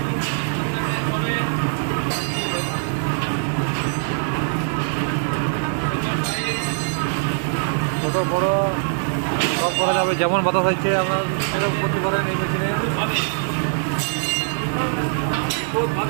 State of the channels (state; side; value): silent; left; 64 dB below the other